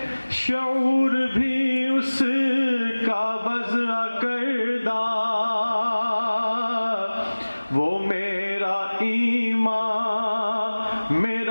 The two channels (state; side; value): inverted; both; correlation -1.00